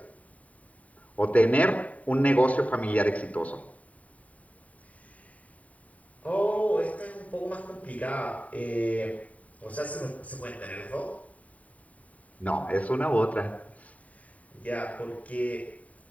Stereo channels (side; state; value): right; late; 0.069 ms